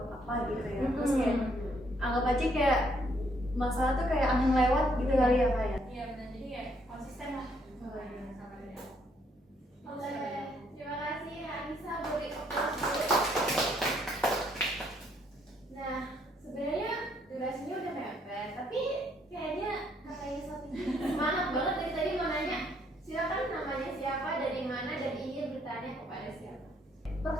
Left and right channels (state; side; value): normal; both; correlation 0.69